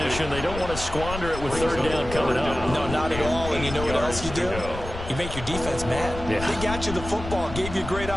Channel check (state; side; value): noise; left; rumble, 9 dB below the sound